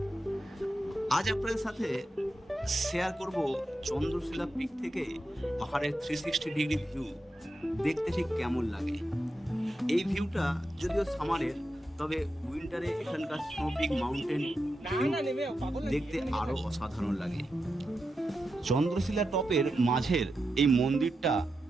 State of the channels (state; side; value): normal; both; correlation 0.88